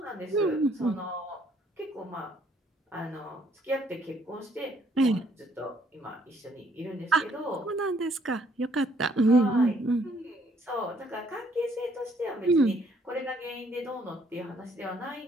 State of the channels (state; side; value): normal; both; correlation 0.66